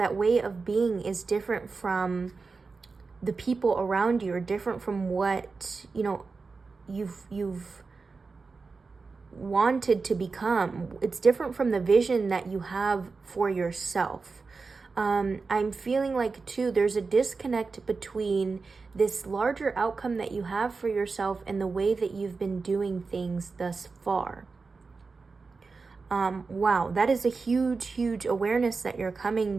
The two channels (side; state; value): left; quieter; 4.4 dB